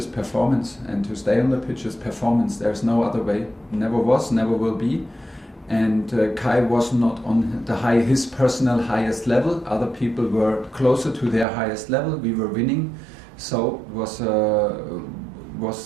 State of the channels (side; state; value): left; drops out; at 11.5 s